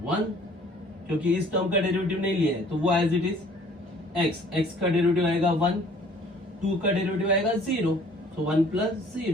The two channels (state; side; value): normal; both; correlation 0.54